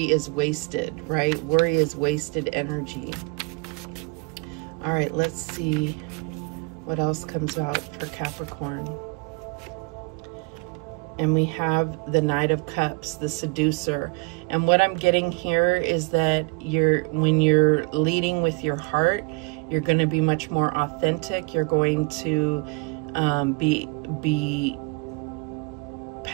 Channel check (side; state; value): left; quieter; 31.0 dB